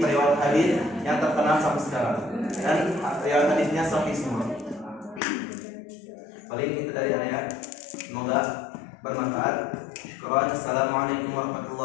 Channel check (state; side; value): drops out; right; at 5.2 s